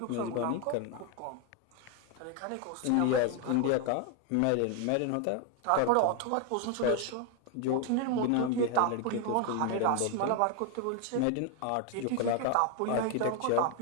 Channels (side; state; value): both; different; correlation 0.01